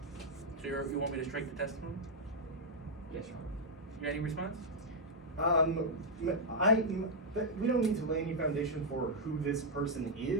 So you want me to strike the testimony? Yes, Your Honor. Any response? We don't need to lay any foundation for who this person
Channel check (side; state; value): both; normal; correlation -0.03